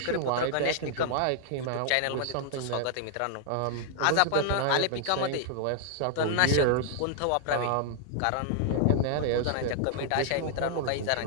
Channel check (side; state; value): both; different; correlation -0.01